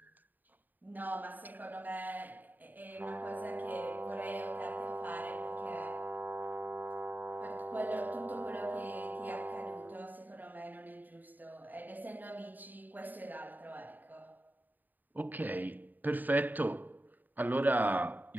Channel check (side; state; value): left; late; 0.087 ms